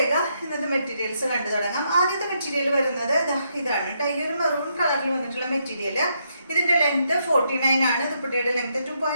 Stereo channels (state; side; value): inverted; both; correlation -0.77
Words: ഇന്നത്തെ മെറ്റീരിയൽസ് കണ്ടു തുടങ്ങാം. ആദ്യത്തെ മെറ്റീരിയൽ വരുന്നത് ഇതാണ് കേട്ടോ. ഈ ഒരു മെറൂൺ കളറിൽ വന്നിട്ടുള്ള മെറ്റീരിയൽ. ഇതിന്റെ ലെങ്ത് 49 ആണ്. ദുപ്പട്ടയുടെ ലെങ്ത്